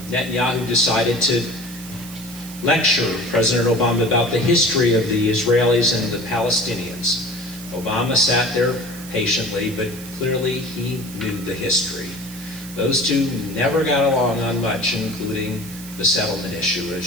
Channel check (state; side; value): noise; right; hiss, 16 dB below the sound